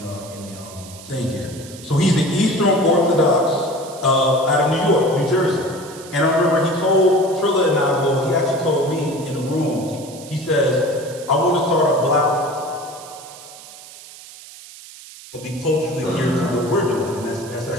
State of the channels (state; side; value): noise; right; hiss, 17 dB below the sound